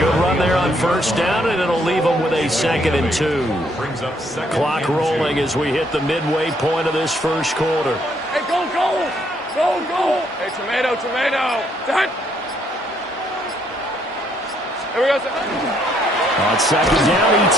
run there on 1st down, and it'll leave them with a 2nd and 2. Clock rolling as we hit the midway point of this first quarter. Hey, go! Hey, tomato. Done. Here we go. On 2nd down,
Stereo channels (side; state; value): both; normal; correlation 0.70